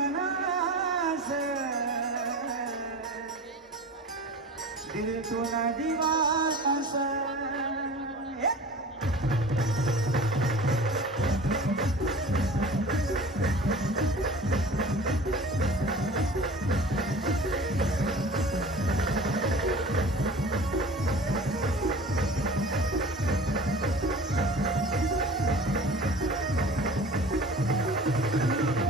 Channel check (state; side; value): normal; both; correlation 0.40